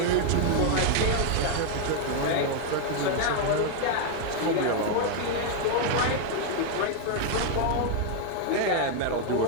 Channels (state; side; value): different; both; correlation 0.00